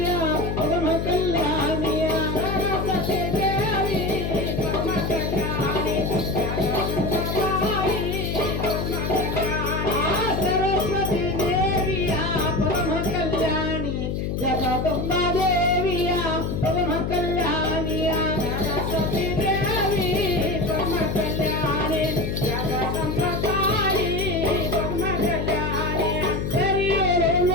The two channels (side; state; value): left; noise; hum, 1 dB below the sound